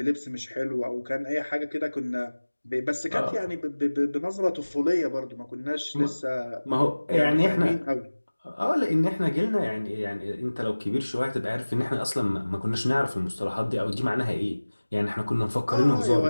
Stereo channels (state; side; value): inverted; both; correlation -1.00